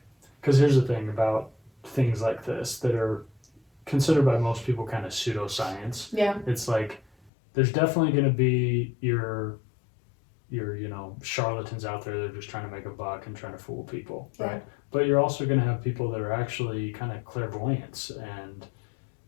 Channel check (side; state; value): right; drops out; at 7.3 s